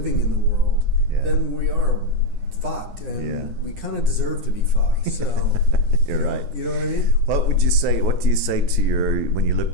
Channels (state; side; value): late; left; 9.9 ms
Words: in the world, then we are fucked, and we kind of deserve to be fucked. So, you know what I mean? What do you say to when you look